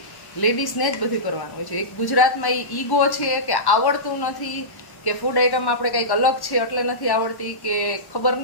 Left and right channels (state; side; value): late; right; 1.1 ms